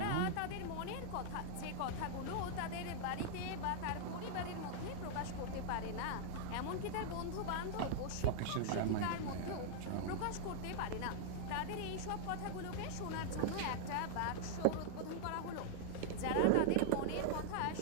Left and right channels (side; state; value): both; different; correlation -0.01